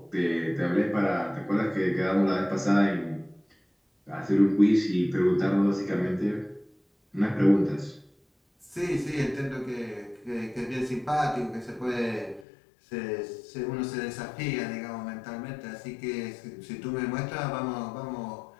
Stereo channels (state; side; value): drops out; right; at 12.5 s